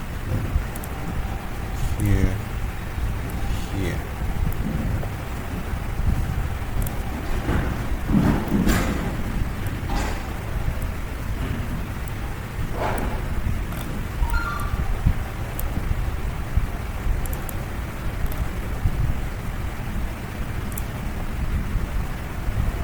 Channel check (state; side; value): identical; both; correlation 1.00